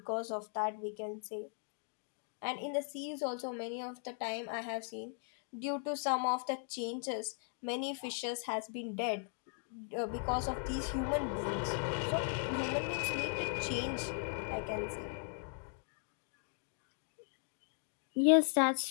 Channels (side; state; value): right; silent; 52 dB below the other